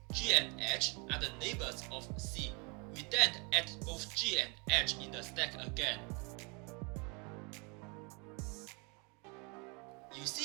G and H are the neighbors of C, we then add both G and H in the stack again. You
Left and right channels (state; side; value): quieter; left; 31.7 dB